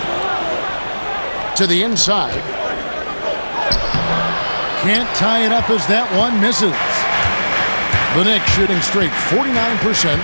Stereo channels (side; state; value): both; inverted; correlation -1.00